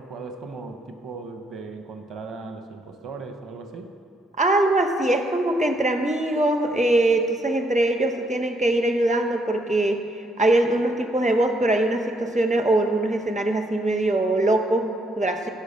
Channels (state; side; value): normal; both; correlation 0.73